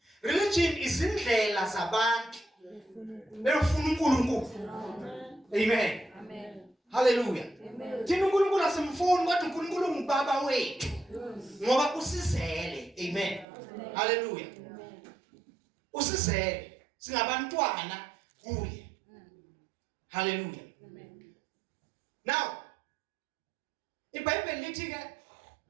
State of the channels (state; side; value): drops out; left; at 13.5 s